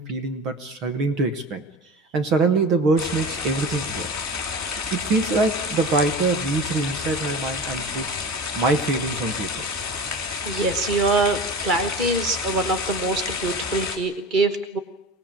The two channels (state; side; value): normal; both; correlation 0.32